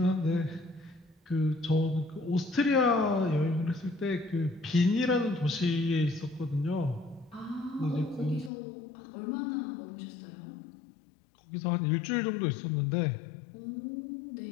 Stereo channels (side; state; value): right; drops out; at 8.5 s